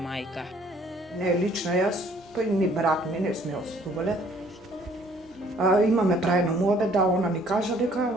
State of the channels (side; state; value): both; normal; correlation 0.60